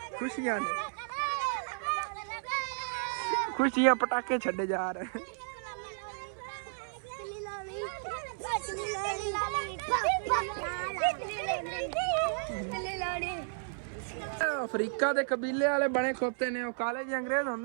ਖੁਸ਼ੀਆਂ ਨੇ, ਖੁਸ਼ੀਆਂ ਪਟਾਕੇ ਛੱਡੇ ਜਾ ਰਹੇ। ਅਫਰੀਕਾ ਦੇ ਕਬੀਲੇ ਵਾਲੇ ਬਣੇ ਖੋਤੇ ਨੇ, ਉਹ ਕਾਲੇ ਜਿਹੇ ਅੰਗਰੇਜ਼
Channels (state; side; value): silent; left; 56 dB below the other